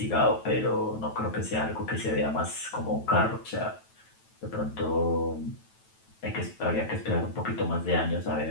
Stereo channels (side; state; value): right; late; 9.2 ms